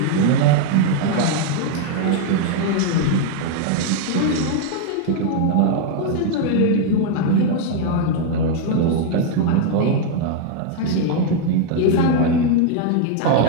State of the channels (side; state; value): both; different; correlation 0.00